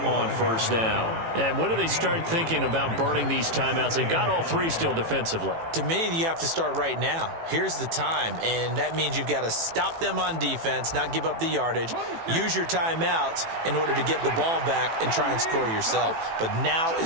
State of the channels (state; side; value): late; left; 18 ms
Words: on 1st down. And when do they start thinking about burning these timeouts? They've got all 3 still defensively. To me, you have to start right now. Here's the time, and that means you've got to stop them on defense, not give up the yardage, use your timeouts in order to get the ball back and try and score yourself. But now